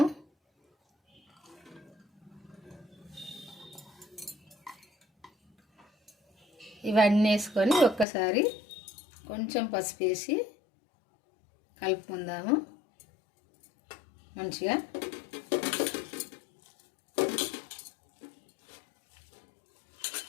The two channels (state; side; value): drops out; right; at 8.1 s